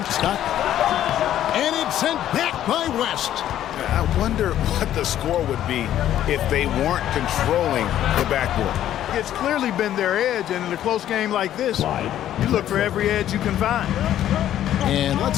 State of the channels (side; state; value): right; quieter; 11.7 dB